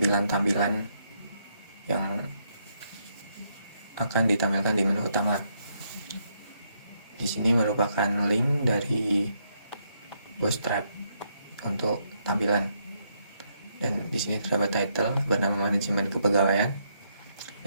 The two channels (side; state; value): both; inverted; correlation -0.76